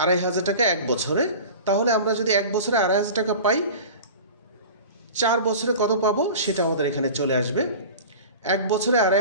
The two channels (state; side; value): inverted; both; correlation -0.36